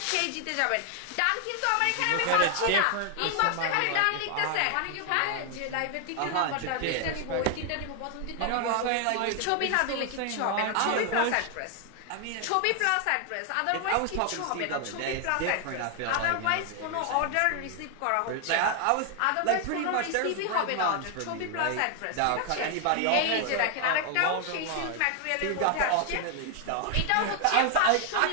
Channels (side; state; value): both; different; correlation 0.00